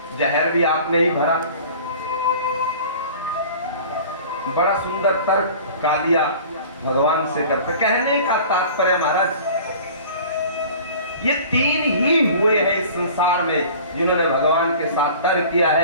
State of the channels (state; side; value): inverted; both; correlation -0.44